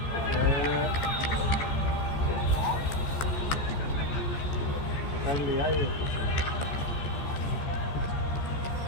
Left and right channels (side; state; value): right; late; 14 ms